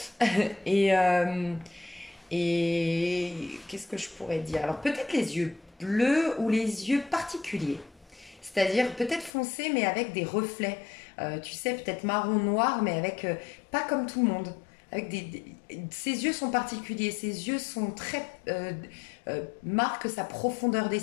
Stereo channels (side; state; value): right; drops out; at 9.3 s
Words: Et. Et qu'est-ce que je pourrais dire? Alors peut-être les yeux bleus ou les yeux particuliers. C'est-à-dire peut-être foncés mais avec des reflets. Tu sais, peut-être marron noir mais avec pas comme tout le monde. Avec ses yeux sont particuliers, ses yeux sont très marquent sa profondeur